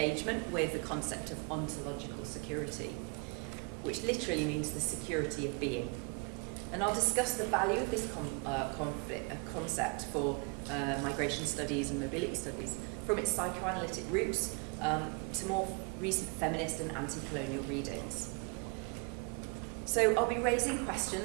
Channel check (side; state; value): left; quieter; 33.9 dB